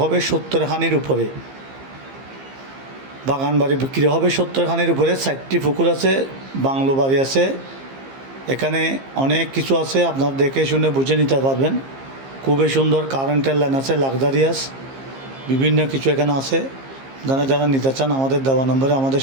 হবে 70 খানির উপরে। বাগান বাড়ি বিক্রি হবে 70 খানির উপরে, 4টি পুকুর আছে, বাংলো বাড়ি আছে। এখানে অনেক কিছু আছে, আপনার দেখে শুনে বুঝে নিতে পারবেন। খুবই সুন্দর কারেন্টের লাইন আছে, লাক্সারিয়াস বিভিন্ন কিছু এখানে আছে। যারা নিতে চান আমাদের দেওয়া নম্বরে আমাদের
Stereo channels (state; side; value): late; left; 15 ms